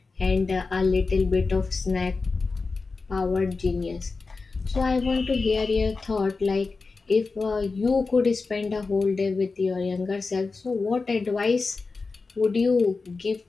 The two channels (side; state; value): right; quieter; 4.1 dB